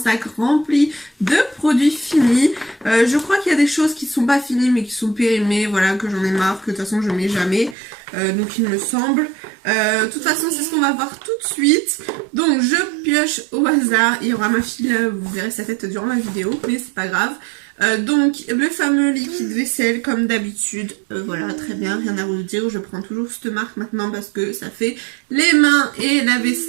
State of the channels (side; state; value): left; drops out; at 7.8 s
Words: rempli de produits finis. Je crois qu'il y a des choses qui ne sont pas finies mais qui sont périmées, voilà, que j'en ai marre, que de toute façon je mets jamais. Donc il me semble. De toute façon c'est ce qu'on va voir tout de suite. Donc je pioche au hasard. Il y aura ma fille là, vous verrez sa tête durant la vidéo, mais c'est pas grave. Donc le fameux liquide vaisselle comme d'habitude, voilà, très bien, rien à vous dire, je prends toujours cette marque maintenant parce que ça fait les mains et la